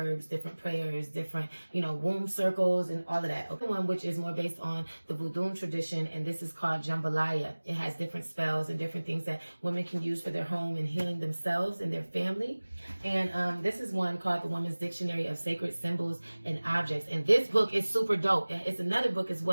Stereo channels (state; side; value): inverted; both; correlation -1.00